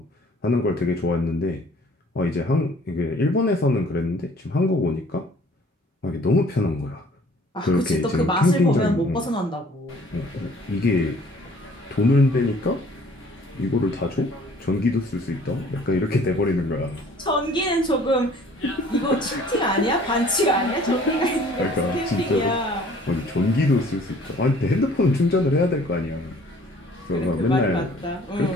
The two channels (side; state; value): both; normal; correlation 0.54